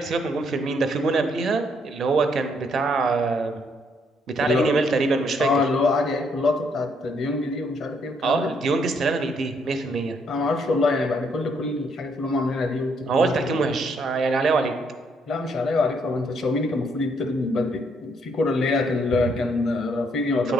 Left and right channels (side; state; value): both; normal; correlation 0.71